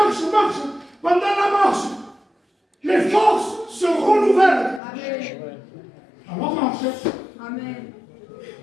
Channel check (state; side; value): drops out; right; at 4.8 s